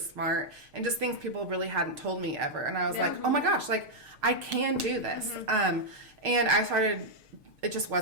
and just things people really hadn't told me ever. And I was like, oh my gosh, like I can do this. And I started, it just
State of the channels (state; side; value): late; left; 6.5 ms